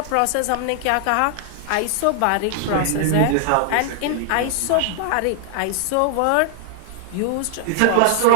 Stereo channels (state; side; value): different; both; correlation 0.00